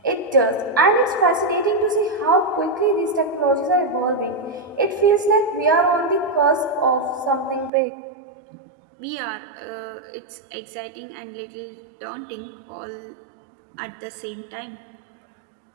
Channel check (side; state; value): left; drops out; at 7.7 s